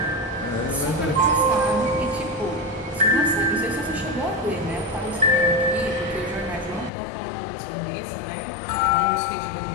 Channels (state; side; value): drops out; right; at 6.9 s